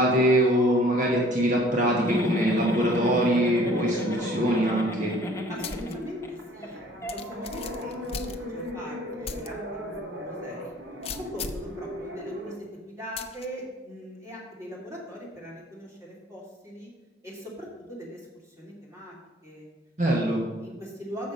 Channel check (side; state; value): both; normal; correlation 0.54